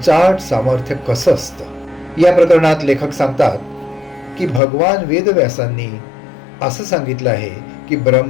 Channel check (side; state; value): right; drops out; at 4.6 s